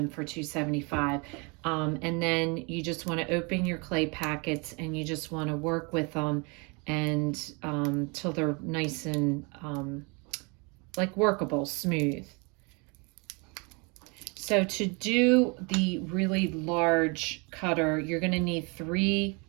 for 275. And then you just want to open your clay packets and you just want to work with them and till they're nice and like workable, smooth. So to do the really large cutter, you're going to need 3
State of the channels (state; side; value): quieter; left; 30.8 dB